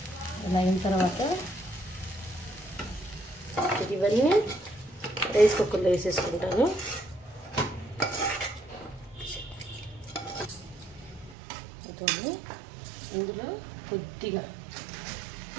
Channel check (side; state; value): left; drops out; at 11.4 s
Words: ఇలా అయిన తర్వాత ఇవన్నీ రైస్ కుక్కర్లో వేసేసుకుంటాను. ఇందులో కొద్దిగా